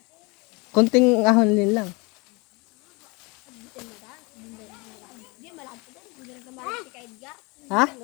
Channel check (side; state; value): right; quieter; 27.4 dB